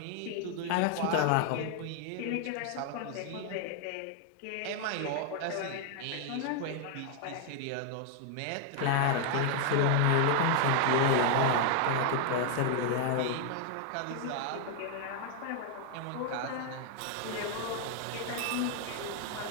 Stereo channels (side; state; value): both; different; correlation 0.00